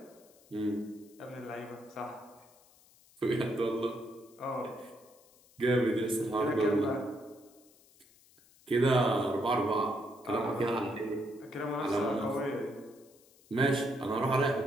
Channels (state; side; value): noise; left; hiss, 28 dB below the sound